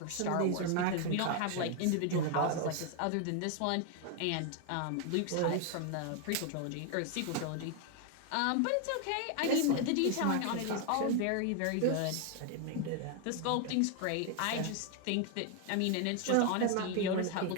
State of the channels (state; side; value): different; both; correlation 0.01